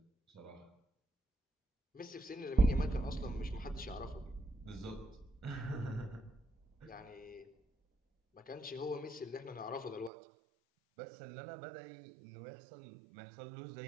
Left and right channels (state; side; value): drops out; left; at 10.1 s